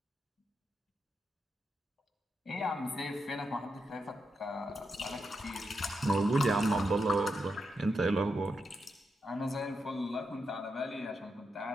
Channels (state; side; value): normal; both; correlation 0.85